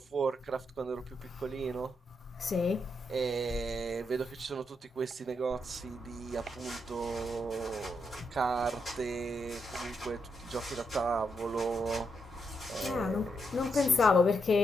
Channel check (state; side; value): normal; both; correlation 0.81